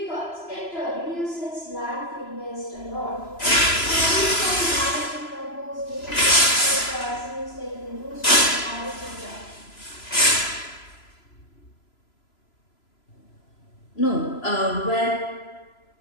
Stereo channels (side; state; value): right; late; 3.0 ms